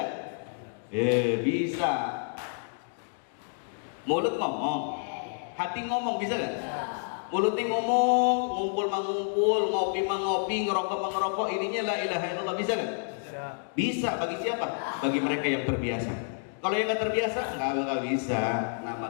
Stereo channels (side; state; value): right; silent; digital silence